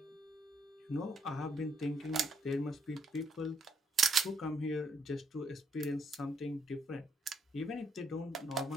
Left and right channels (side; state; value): both; normal; correlation 0.72